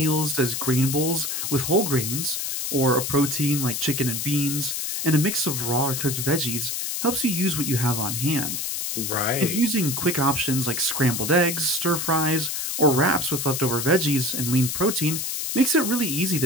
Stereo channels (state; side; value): noise; left; hiss, 2 dB below the sound